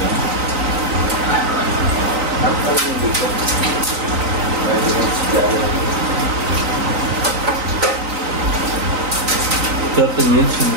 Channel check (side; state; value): left; late; 3.9 ms